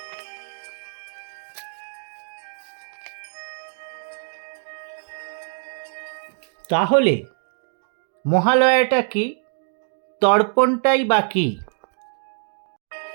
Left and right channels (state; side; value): silent; left; 58 dB below the other